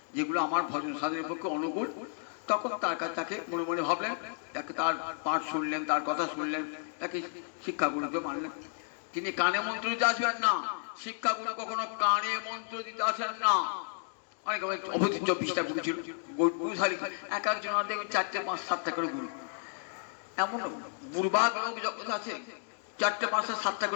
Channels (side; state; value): right; silent; 56 dB below the other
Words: যেগুলো আমার ভজন সাধনের পক্ষে অনুকূল, তখন তার কাছে তাকে মনে মনে ভাবলেন, তাকে তার পাঠ শুনলেন, তার কথা শুনলেন, তাকে শিক্ষাগুরুকে মানলেন। তিনি কানে মন্ত্র দিতে আসবেন না, শিক্ষাগুরু কখনো কানে মন্ত্র দিতে আসেন না। অনেক অবধি 24টা গুরু ছিল, গুরুধারী এক একজন দেখবেন 4টে 5 7টা করে গুরু। এমন বুড়বাগ লোক যখন আছে 4টে 5টা 7টা